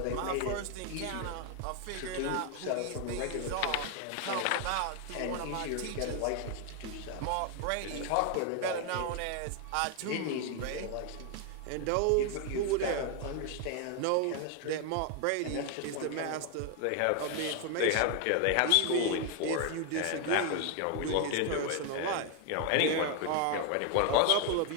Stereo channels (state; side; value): different; both; correlation 0.00